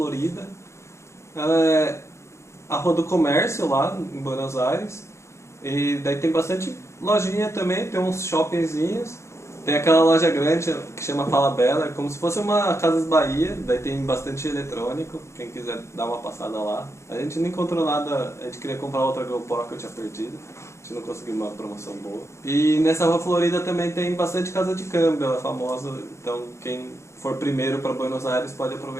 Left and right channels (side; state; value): right; late; 0.14 ms